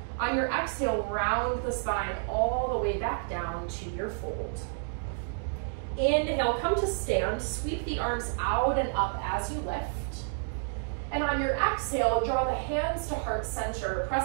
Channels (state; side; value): silent; left; digital silence